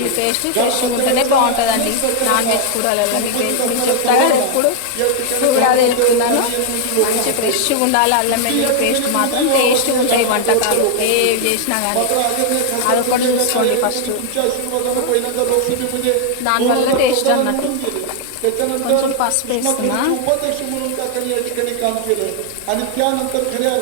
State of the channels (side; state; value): both; different; correlation 0.00